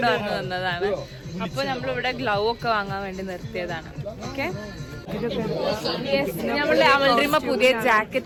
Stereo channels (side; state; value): both; identical; correlation 1.00